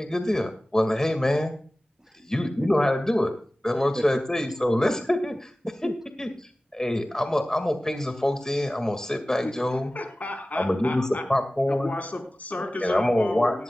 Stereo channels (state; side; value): normal; both; correlation 0.97